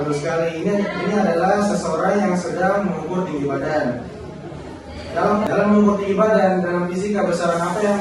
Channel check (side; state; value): both; identical; correlation 1.00